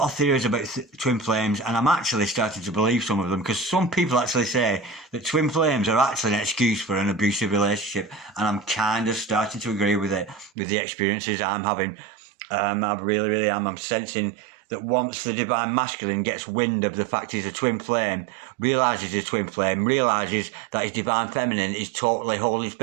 of theories about twin flames, and I'm actually starting to believe some of them, because some people actually say that twin flames are actually an excuse for an abusive relationship, and I'm kind of starting to agree with it, with the experiences I'm having. I really, really am. I'm sensing that once the divine masculine gets wind of the fact he's a twin flame, realises he's a twin flame, realises that his divine feminine is totally holding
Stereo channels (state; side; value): drops out; left; at 10.5 s